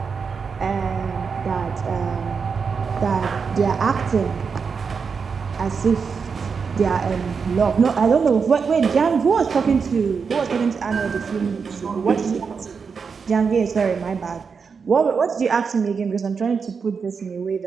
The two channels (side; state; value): left; quieter; 5.6 dB